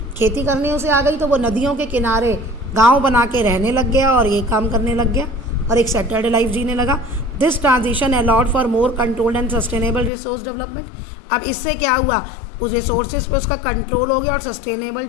खेती करने उसे आ गई, तो वो नदियों के किनारे गांव बना के रहने लग गया और ये काम करने लग गया और एक सेटल्ड लाइफ जीने लगा। This transition allowed for more controlled and sustainable resource development. अब इससे क्या हुआ? उस रिसोर्सेज पे उसका कंट्रोल हो गया और सस्टेनेबल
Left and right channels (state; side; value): drops out; right; at 10.1 s